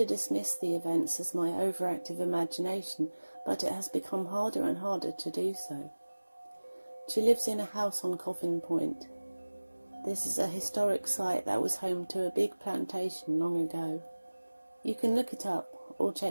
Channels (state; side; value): inverted; both; correlation -1.00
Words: dismiss the events as my overactive imagination, but it has become harder and harder to do so. She lives in a house on Coffin Point. This is a historic site that was home to a big plantation long ago. You can look it up or